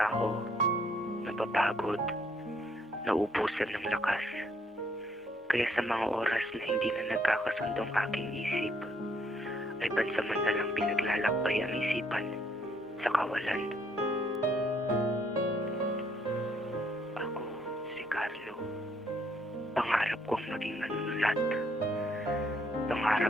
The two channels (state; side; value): normal; both; correlation 0.68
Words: napapagod, nauubusan ng lakas. Kaya sa mga oras na hindi na nagkakasundo ang aking isip, ay pansamantalang pinaglalakbay ang isipan sa kawalan. Ako, si Carlo. Pangarap kong maging manunulat.